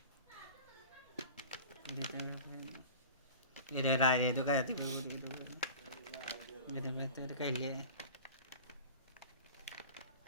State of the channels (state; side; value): inverted; both; correlation -0.38